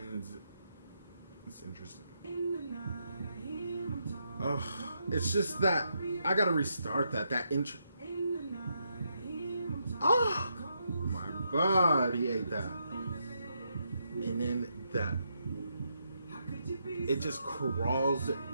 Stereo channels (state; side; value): inverted; both; correlation -0.80